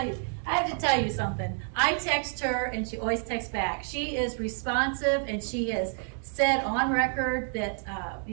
tell you something. I text her and she always texts back. She is responsive and she has said on record that,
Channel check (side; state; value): left; silent; 59 dB below the other